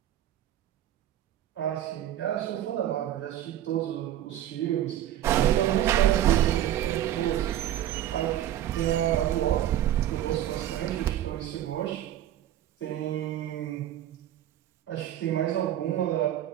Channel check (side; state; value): left; quieter; 12.1 dB